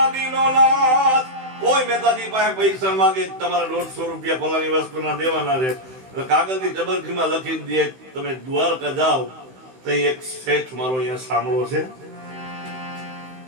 નાથ. કોઈ મહેતાજી પાસે પૈસા માંગે તમારે 150 રૂપિયા ફલાની વસ્તુના દેવાના છે. કાગળની ટબરખીમાં લખી દે. તમે દ્વારકા જાઓ તો એક શેઠ મારો અહીંયા સાંભળો છે,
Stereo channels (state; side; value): late; left; 16 ms